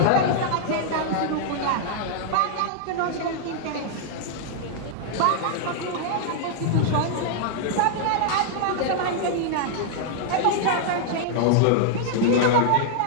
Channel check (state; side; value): different; both; correlation -0.01